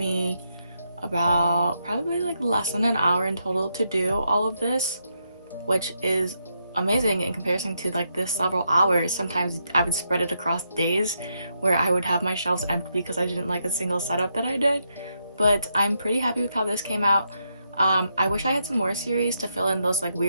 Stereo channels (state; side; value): inverted; both; correlation -0.81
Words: about probably like less than an hour in total to do all of this, which is amazing in comparison to like this several hours. Sometimes I would spread it across days where I would have my shelves empty because I didn't like a single setup that I did. But I'm pretty happy with how this came out. I wish I had some more series to fill in those like